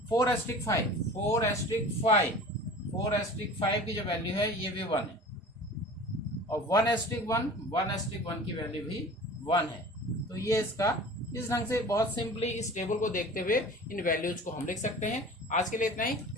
4/5 की जो वैल्यू है ये भी 1 है, और 1/1 की वैल्यू भी 1 है। तो ये इसका इस ढंग से बहुत सिंपली इस टेबल को देखते हुए इन वैल्यूज को हम लिख सकते हैं। आज के लिए इतना ही,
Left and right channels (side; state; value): both; normal; correlation 0.41